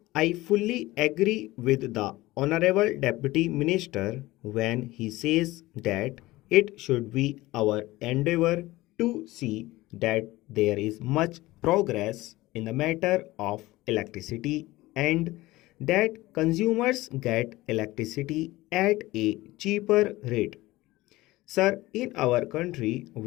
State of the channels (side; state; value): right; quieter; 18.8 dB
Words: I fully agree with the Honorable Deputy Minister when he says that it should be our endeavor to see that there is much progress in the matter of electricity and that consumers get electricity at a cheaper rate. Sir, in our country,